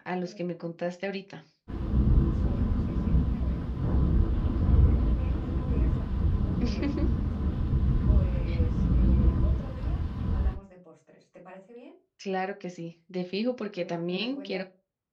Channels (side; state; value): both; identical; correlation 1.00